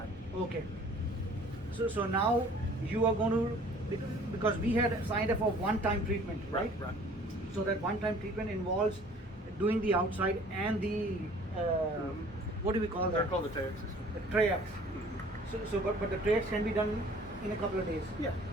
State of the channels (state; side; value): normal; both; correlation 0.52